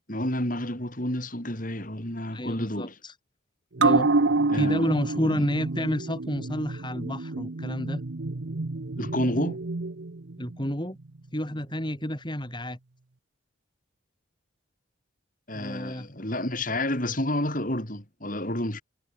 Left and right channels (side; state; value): both; normal; correlation 0.44